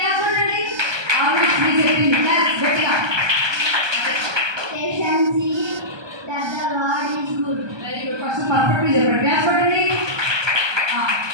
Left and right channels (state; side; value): late; left; 1.2 ms